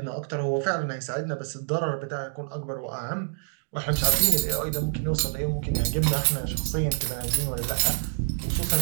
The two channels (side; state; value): left; silent; digital silence